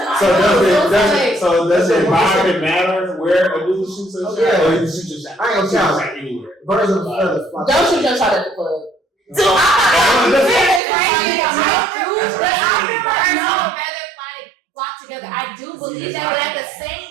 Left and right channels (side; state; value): left; drops out; at 10.8 s